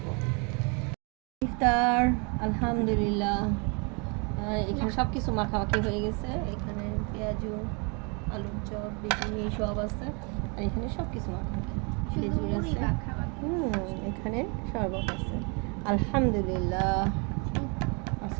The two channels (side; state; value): left; quieter; 33.5 dB